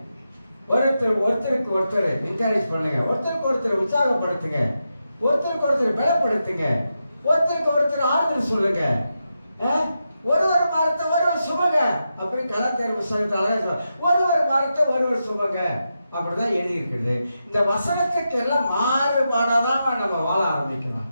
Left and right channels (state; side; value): inverted; both; correlation -0.87